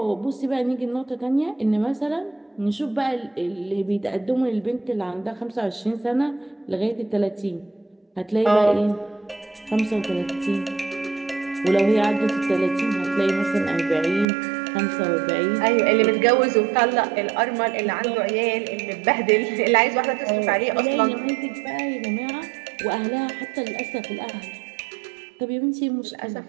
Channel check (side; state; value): left; drops out; at 14.2 s